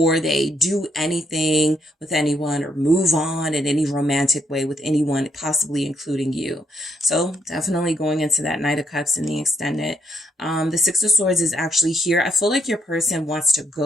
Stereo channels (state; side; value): normal; both; correlation 0.73